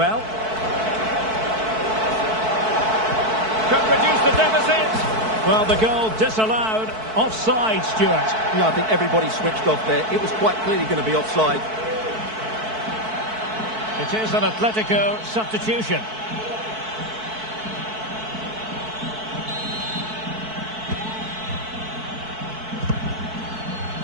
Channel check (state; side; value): late; left; 4.6 ms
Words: Could reduce the deficit. Well, the goal disallowed. Offside, Stuart. Yeah, I think everybody switched off there. It was quite clearly going to be offside. It is an Atletico substitution.